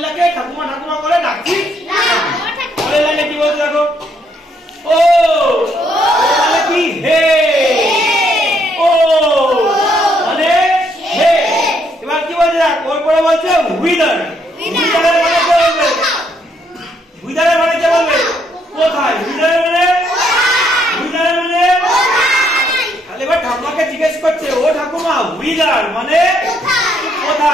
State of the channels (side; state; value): both; normal; correlation 0.72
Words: ঠাকুমা ঠাকুমা করে ডাকছি। পরের লাইনে কি বলছে দেখো, ও মানে কি হে, ও মানে হে। এবার কি বলছে দেখ, ওর পরে বলছে হুইদার, হুইদারের মানে কে বলবে, হুইদারের মানে কে বলবে কোথায়, হুইদারের মানে তাহলে এবার ঠাকুমাকে জিজ্ঞেস করছে ও ঠাকুমা হুইদার মানে